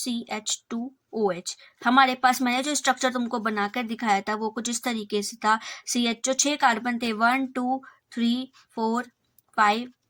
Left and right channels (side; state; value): both; identical; correlation 1.00